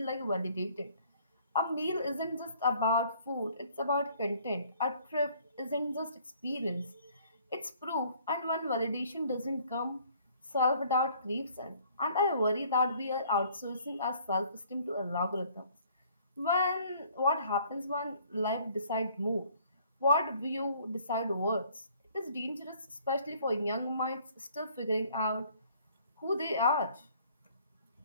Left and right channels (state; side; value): inverted; both; correlation -0.59